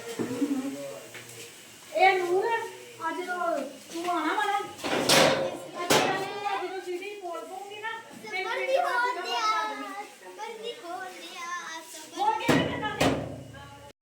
ਇਹ ਨੂਰ ਅੱਜ ਤੂੰ ਆਣਾ ਵਾਲਾ ਜਦੋਂ ਸੀਡੀ ਬੋਲ ਪਊਂਗੀ ਨਾ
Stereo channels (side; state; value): both; identical; correlation 1.00